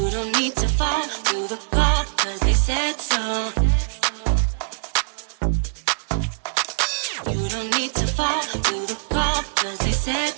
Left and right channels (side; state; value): left; silent; 64 dB below the other